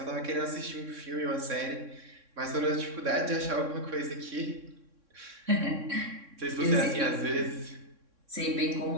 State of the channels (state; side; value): late; left; 3.6 ms